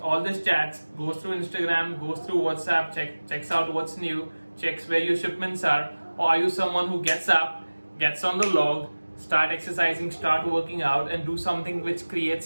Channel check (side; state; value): both; inverted; correlation -1.00